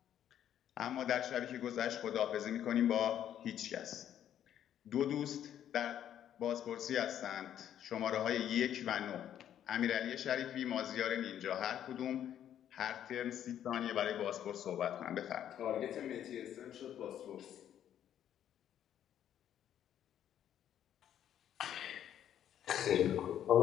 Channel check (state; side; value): quieter; right; 10.4 dB